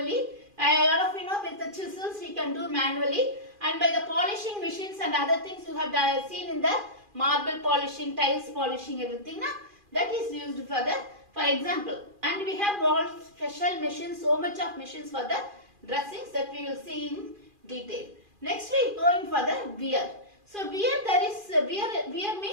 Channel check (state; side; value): late; left; 2.4 ms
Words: A lot of with the chisels we can do manually, and by the polishing machines and other things you have seen in the marble polishing, tiles polishing, everything that is used for example. And we have all special machines, so much of machines for the dressings that we will see in detail. Next we go in for the wear. So wear